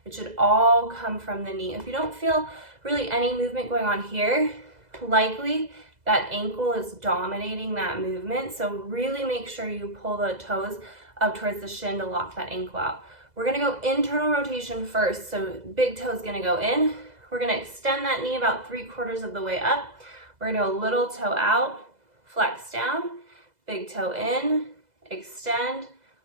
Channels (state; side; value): late; left; 2.0 ms